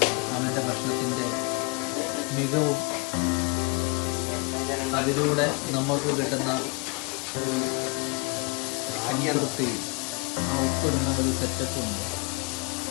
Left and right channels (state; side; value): quieter; right; 31.0 dB